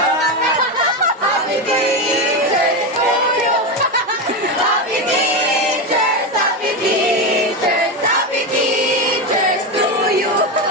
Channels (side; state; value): both; normal; correlation 0.14